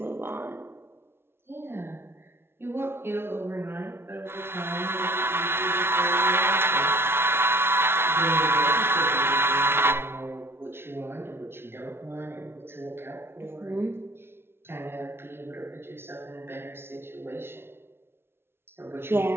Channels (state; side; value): late; left; 0.12 ms